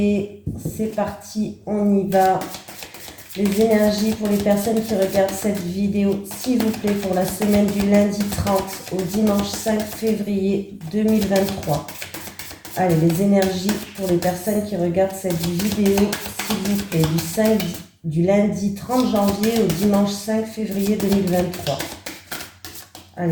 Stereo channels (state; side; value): identical; both; correlation 1.00